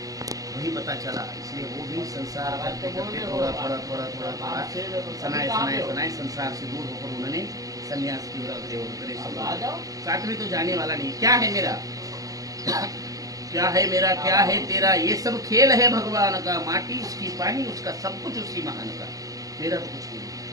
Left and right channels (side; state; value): left; late; 0.17 ms